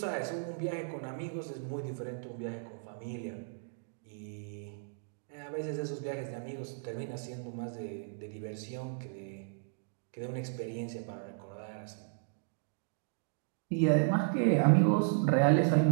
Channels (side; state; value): left; silent; digital silence